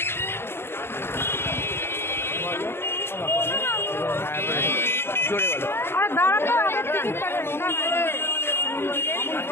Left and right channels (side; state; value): right; late; 0.11 ms